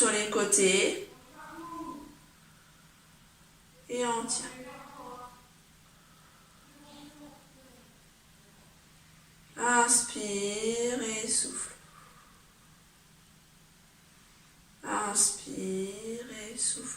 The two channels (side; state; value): both; identical; correlation 1.00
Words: les côtés. Et on tient. Inspire et souffle. Inspire et